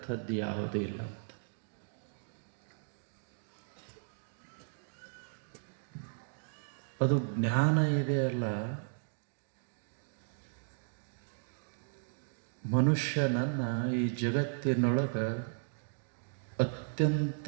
ಯಾವುದೂ ಇಲ್ಲ ಅಂತ. ಅದು ಜ್ಞಾನ ಇದೆಯಲ್ಲ, ಮನುಷ್ಯನನ್ನು ಈ ಜಗತ್ತಿನೊಳಗೆ ಅತ್ಯಂತ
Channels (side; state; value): left; silent; digital silence